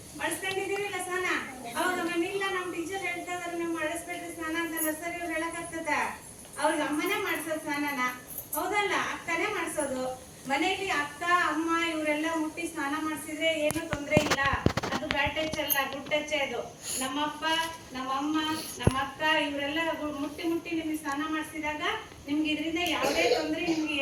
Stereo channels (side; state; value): both; identical; correlation 1.00